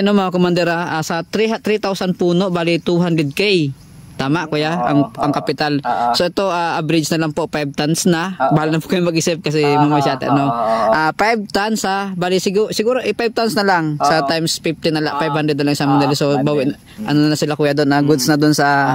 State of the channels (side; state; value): both; identical; correlation 1.00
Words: mga commander, sa 3,000 puno, bali 200k. Tama kuya, ang kapital. So ito, average na lang po, 5 tons na. Bahala na po kayo mag-isip kasi mamasyate. 5 tons bali siguro 5 tons na lang. Sa times 50 na lang, 500 na lang sa mga. So, bawin, na sila kuya doon, goods na doon sa,